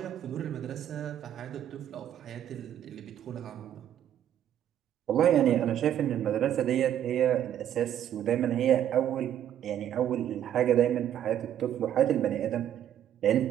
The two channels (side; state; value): left; quieter; 10.7 dB